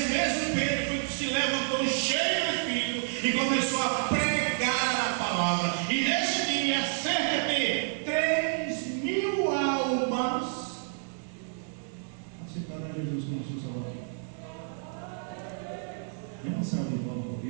mesmo Pedro foi que se levantou cheio do Espírito e começou a pregar a palavra. E nesse dia, cerca de 3.000 almas aceitaram a Jesus como seu Salvador. É uma salva de palmas por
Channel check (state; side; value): silent; left; 58 dB below the other